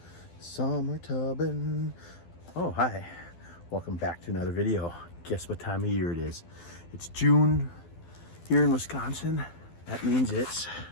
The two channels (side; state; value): right; late; 12 ms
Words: Summer tubbing. Oh, hi. Welcome back to another video. Guess what time of year it is? It's June here in Wisconsin. That means it's